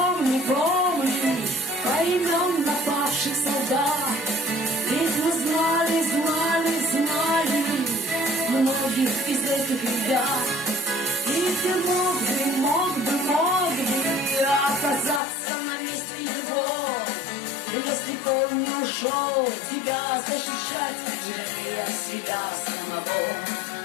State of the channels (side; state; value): right; drops out; at 15.2 s